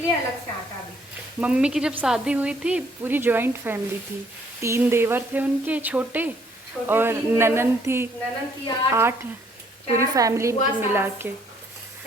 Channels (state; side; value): normal; both; correlation 0.65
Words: अलग से आटा भी। मम्मी की जब शादी हुई थी पूरी जॉइंट फैमिली थी, 3 देवर थे उनके छोटे, और 3 देवर, ननन थी ननन की 8, पूरी 4 फैमिली बुआ की मिला सास, के।